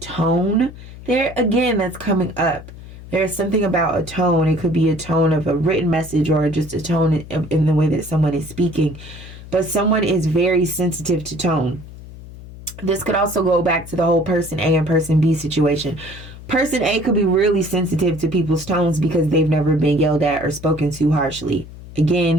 there. Again, that's coming up. There's something about a tone. It could be a tone of a written message or just a tone in the way that someone is speaking. But someone is very sensitive to tone. This could also go back to the whole person A and person B situation. Person A could be really sensitive to people's tones because they've never been yelled at or spoken to harshly.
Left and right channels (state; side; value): noise; left; hum, 15 dB below the sound